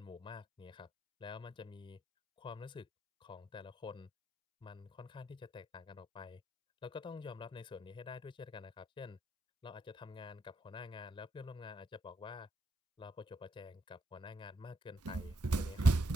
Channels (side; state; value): both; normal; correlation 0.77